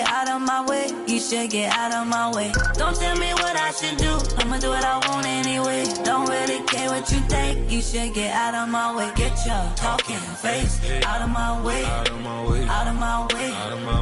out of my way, you should get out of my way. Don't tell me what I should do, I'ma do what I want anyway. Don't really care what you think, you should get out of my way. Get your talking face out of my way, out of my way, out of my way, out of my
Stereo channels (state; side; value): identical; both; correlation 1.00